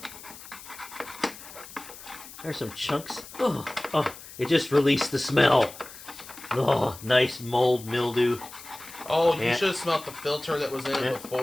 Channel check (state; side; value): noise; left; hiss, 16 dB below the sound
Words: There's some chunks. Oh, it just released the smell. Oh, nice mold mildew. Oh, you should have smelled the filter that was in it